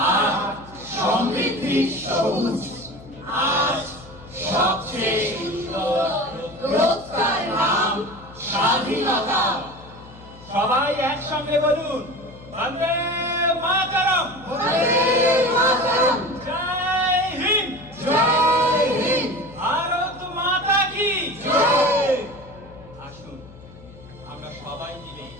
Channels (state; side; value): noise; left; hum, 20 dB below the sound